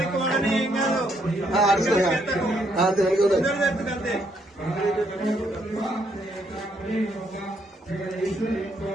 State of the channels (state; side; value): normal; both; correlation 0.72